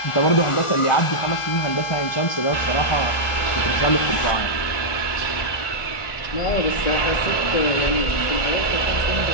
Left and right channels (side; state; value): right; late; 1.4 ms